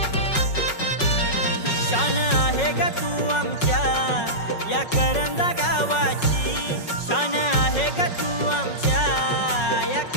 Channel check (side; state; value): right; late; 5.4 ms